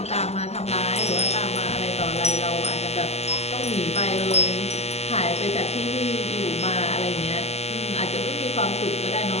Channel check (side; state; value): right; late; 0.30 ms